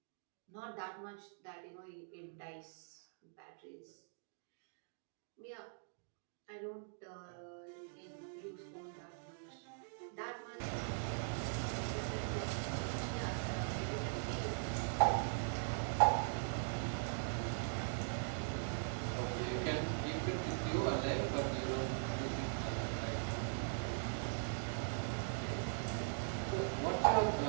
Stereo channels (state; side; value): silent; left; digital silence